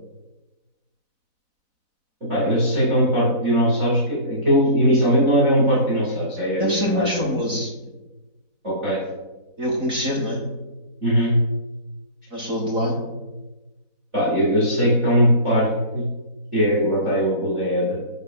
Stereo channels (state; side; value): late; left; 4.0 ms